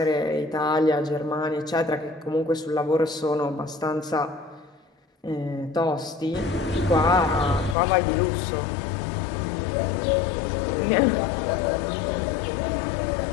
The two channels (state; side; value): drops out; right; at 7.8 s